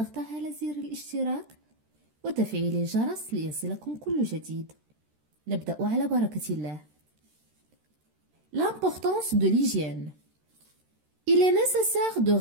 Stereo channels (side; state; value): left; late; 13 ms